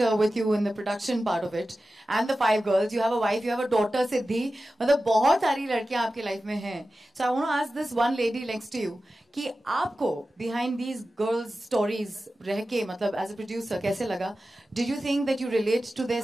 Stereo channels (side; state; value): both; normal; correlation 0.94